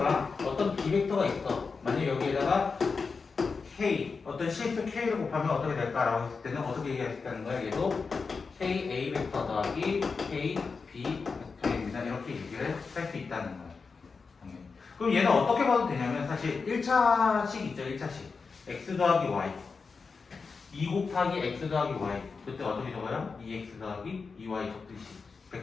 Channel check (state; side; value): quieter; right; 4.8 dB